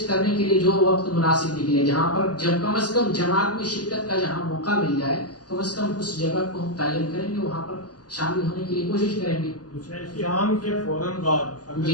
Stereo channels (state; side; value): late; right; 0.68 ms